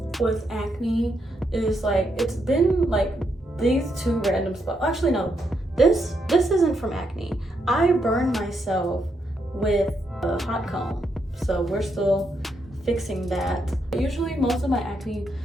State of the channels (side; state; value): both; normal; correlation 0.79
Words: with acne is like, it's been like these two random spots. Actually, no, this isn't from acne. I burned myself with a hot comb, so we're still fixing that. Usually most of my acne